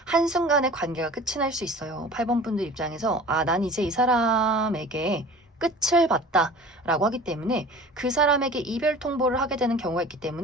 한순간에 관계가 끝이 날 수 있어요. 8번 분들 입장에서 난 이제 이 사람에게 끝을 봤다라고 하기 때문에 그 사람에게 이별 통보를 하게 되는 경우가 있기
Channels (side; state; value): both; normal; correlation 0.41